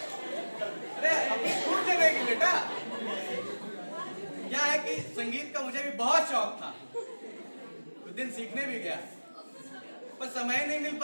अरे अभी छूट जाएगी बेटा। क्या है कि संगीत का मुझे भी बहुत शौक था, उस दिन सीखने भी गया पर समय नहीं मिल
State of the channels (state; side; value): inverted; both; correlation -1.00